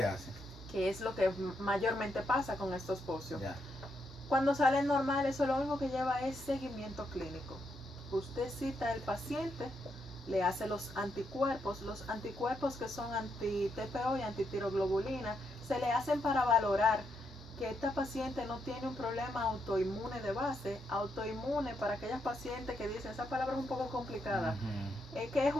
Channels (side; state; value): both; normal; correlation 0.80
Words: hace? Que es lo que mayormente pasa con estos bocios. Ya. Cuando salen normal, eso lo único que lleva es seguimiento clínico. Usted cita al paciente, le hace los anticuerpos que son anti-TPO y antitiroglobulina, se le hacen para valorar que esta paciente no tiene un problema autoinmune de base. Autoinmune, para aquellas pacientes que dicen, esa palabra es un poco complicada, Ujú. es que es